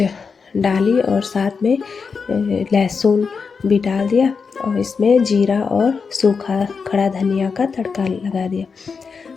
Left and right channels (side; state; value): right; quieter; 5.3 dB